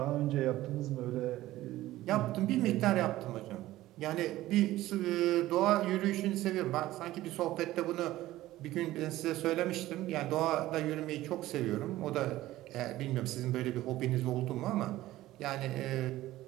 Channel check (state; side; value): quieter; left; 15.9 dB